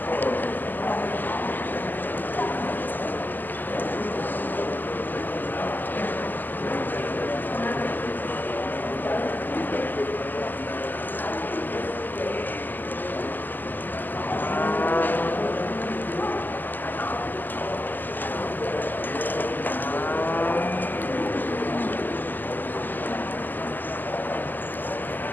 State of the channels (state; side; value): late; right; 0.087 ms